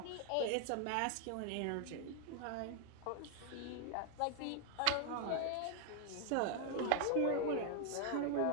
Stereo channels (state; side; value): different; both; correlation 0.00